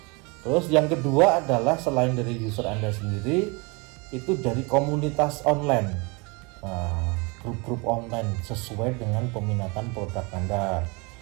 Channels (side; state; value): left; quieter; 28.8 dB